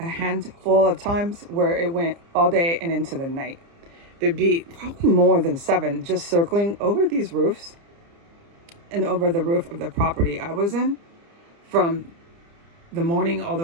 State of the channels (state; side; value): late; left; 30 ms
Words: handful of times where it went all day and into the night. There'd be probably more than 7 just circling over these roofs and over the roof of the property I was in from the morning all